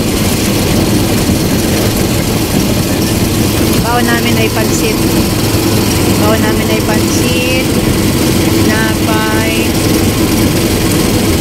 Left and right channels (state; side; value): identical; both; correlation 1.00